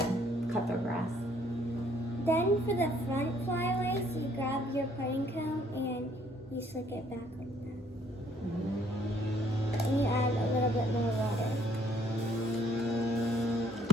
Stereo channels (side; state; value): both; normal; correlation 0.64